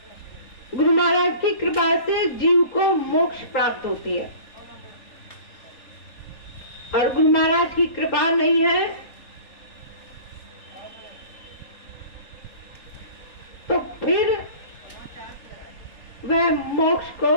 गुरु महाराज की कृपा से जीव को मोक्ष प्राप्त होती है। और गुरु महाराज की कृपा नहीं है तो फिर वह मोक्ष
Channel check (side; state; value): right; late; 3.3 ms